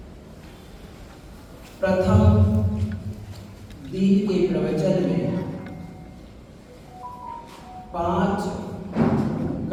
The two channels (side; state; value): both; identical; correlation 1.00